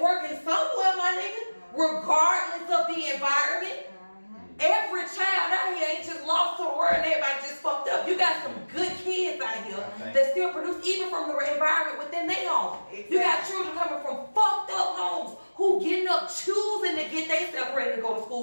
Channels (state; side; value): inverted; both; correlation -1.00